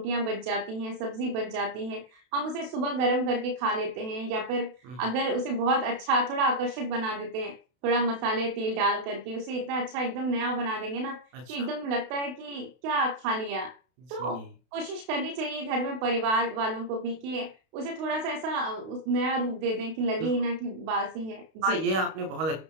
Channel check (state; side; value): late; left; 32 ms